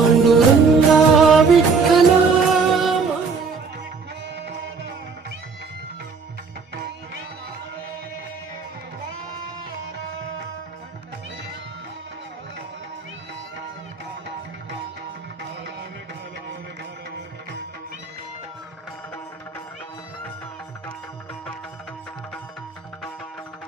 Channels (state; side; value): quieter; left; 5.0 dB